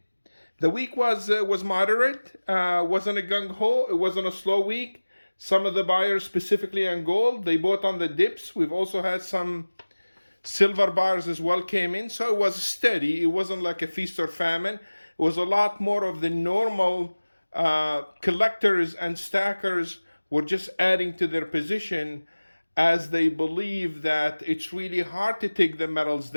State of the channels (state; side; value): inverted; both; correlation -1.00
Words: The week was moderate. Wasn't a gung ho. It wasn't a slow week. Some of the buyers, specifically on gold, they bought on the dips. We've also had some silver buyers as well came in, so it was steady. It wasn't like a feast or famine. It was a lot more of the normal collectors and stackers were just adding to their position as they believe that it's really hard to take the metals